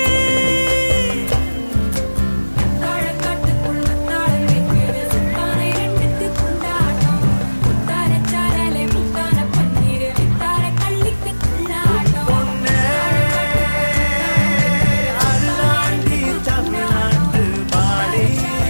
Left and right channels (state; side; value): inverted; both; correlation -1.00